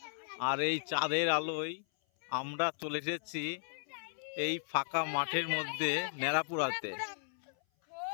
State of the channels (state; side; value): silent; right; 54 dB below the other